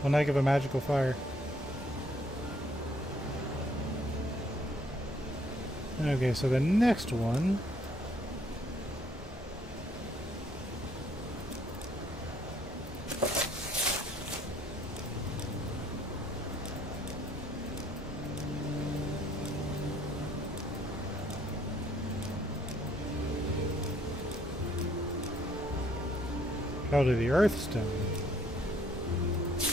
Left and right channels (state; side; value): normal; both; correlation 0.65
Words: One heck of a magical fire. Okay, so the next one. Probably the Earth Stone.